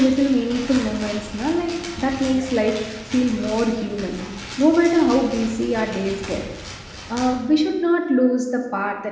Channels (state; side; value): identical; both; correlation 1.00